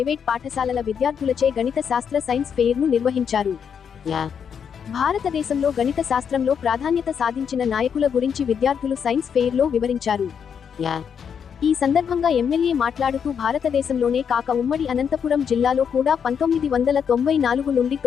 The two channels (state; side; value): quieter; right; 7.3 dB